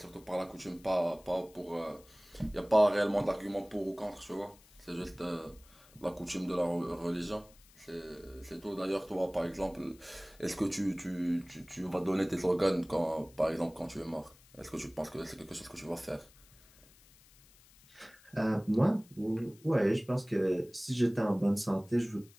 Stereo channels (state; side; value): noise; left; hiss, 26 dB below the sound